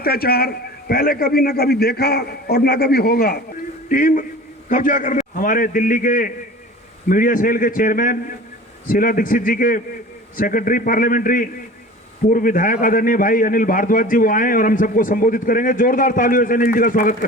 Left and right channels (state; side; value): normal; both; correlation 0.40